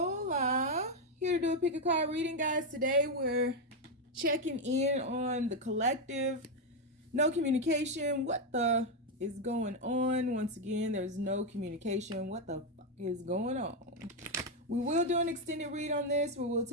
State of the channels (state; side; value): normal; both; correlation 0.04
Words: here to do a pick a card reading, guys. Today we're checking in on the collective. No communication. What the is going on? Once again, there's no communication. What the fuck is going on? We will do an extended read on this where we'll